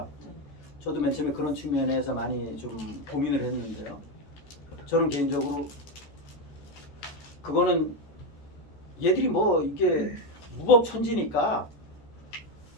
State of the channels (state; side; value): late; right; 14 ms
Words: 네. 저도 맨 처음에 그런 측면에서 많이 좀 고민을 했는데요. 저는 개인적으로 그거는 얘들이 뭐 이게 무법천지니까